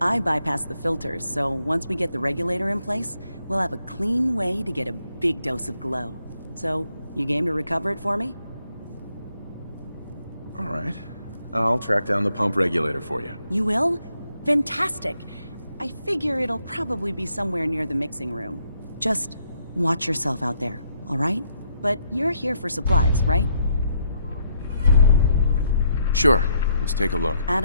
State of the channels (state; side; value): inverted; both; correlation -0.74